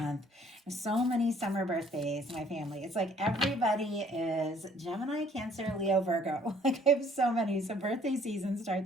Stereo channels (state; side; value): normal; both; correlation 0.59